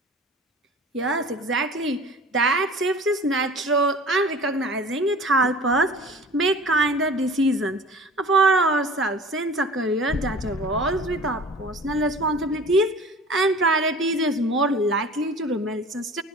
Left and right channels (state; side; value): normal; both; correlation 0.43